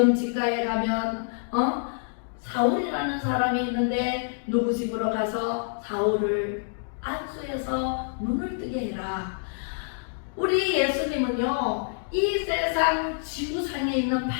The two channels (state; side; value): silent; right; digital silence